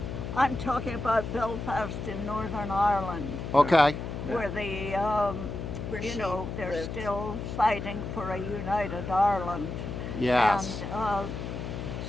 I'm talking about Belfast in Northern Ireland, Okay. where they're still fighting for a united Ireland. Yes. And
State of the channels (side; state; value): left; noise; hum, 6 dB below the sound